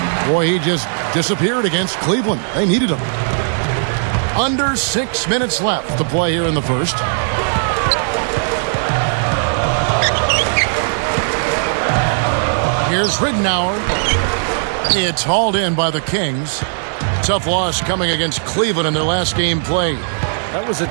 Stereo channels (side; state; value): left; silent; digital silence